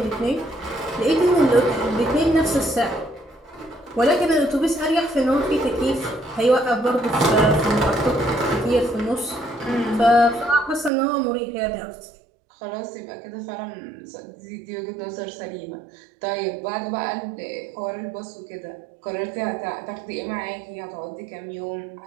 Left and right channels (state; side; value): drops out; left; at 10.9 s